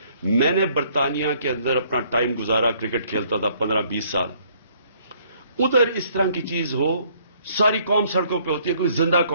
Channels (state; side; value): inverted; both; correlation -0.64